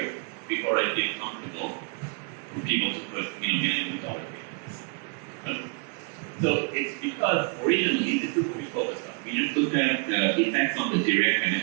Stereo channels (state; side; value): quieter; left; 34.3 dB